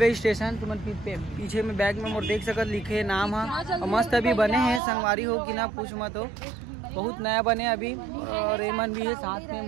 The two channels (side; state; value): left; drops out; at 4.8 s